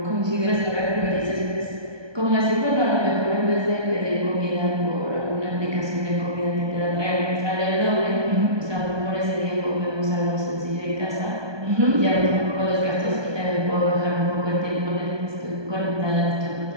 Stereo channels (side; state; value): left; late; 1.2 ms